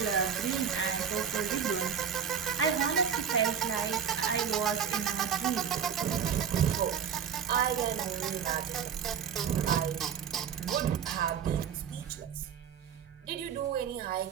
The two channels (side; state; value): left; quieter; 7.8 dB